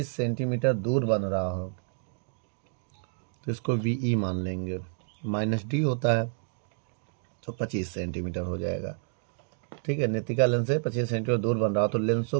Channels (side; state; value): left; silent; digital silence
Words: सेंटीमीटर दूर बन रहा हो, तो इसको VE मान लेंगे। -D होता है तो 25 सेंटीमीटर हो जाएगा। ठीक है, नेत्रिका लेंस से 25 सेंटीमीटर दूर बन रहा हो, तो लेंसों